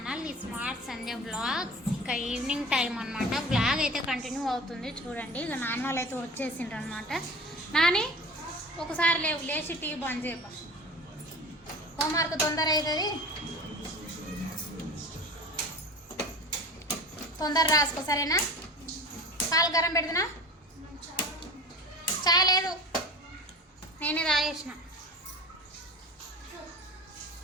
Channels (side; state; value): both; normal; correlation 0.36